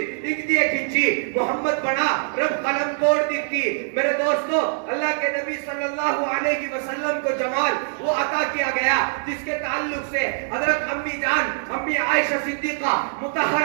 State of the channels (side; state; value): left; silent; digital silence